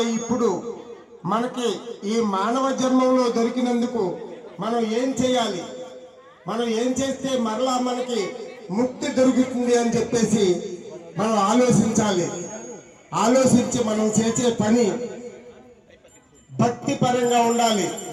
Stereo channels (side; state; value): both; identical; correlation 1.00